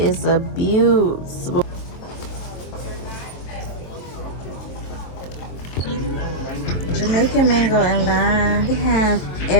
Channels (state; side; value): late; right; 23 ms